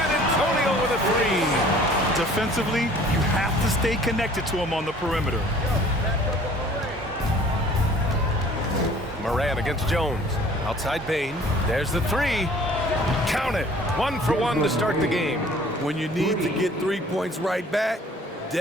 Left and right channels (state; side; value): normal; both; correlation 0.52